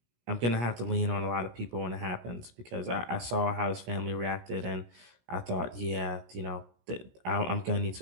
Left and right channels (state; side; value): late; left; 17 ms